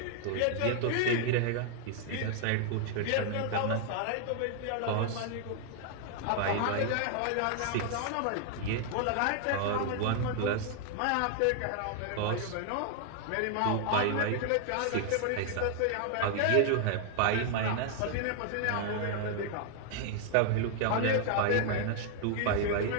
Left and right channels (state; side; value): different; both; correlation 0.00